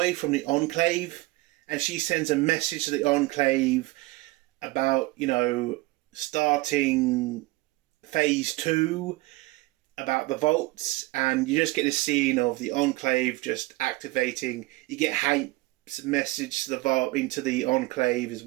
from the Enclave, and she sends a message to the Enclave about, starting phase 2, about the vaults, and you just get this scene of the Enclave just activating. You get Hank's message to the vault into the Enclave as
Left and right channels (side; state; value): left; quieter; 20.9 dB